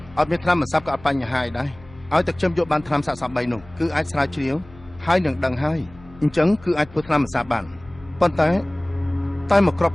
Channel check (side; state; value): left; noise; hum, 22 dB below the sound